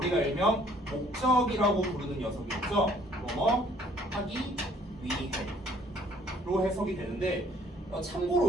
일명 목적이라고 부르는 녀석이 있죠. 뭐뭐 하기 위해로 해석이 되는데,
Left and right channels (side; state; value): both; normal; correlation 0.60